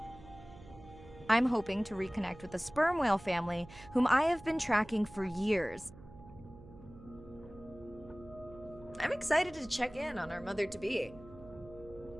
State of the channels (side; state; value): right; noise; hum, 19 dB below the sound